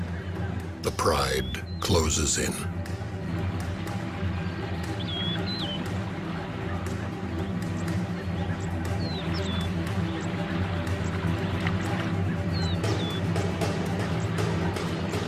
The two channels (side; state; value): both; identical; correlation 1.00